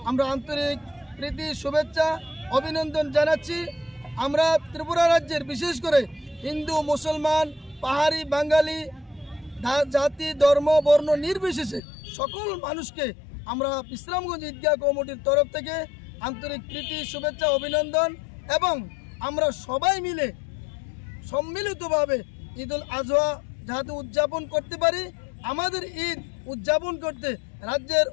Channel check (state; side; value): drops out; right; at 11.8 s